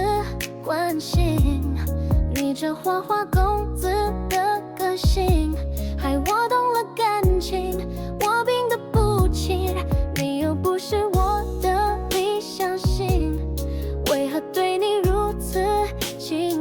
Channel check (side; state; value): both; identical; correlation 1.00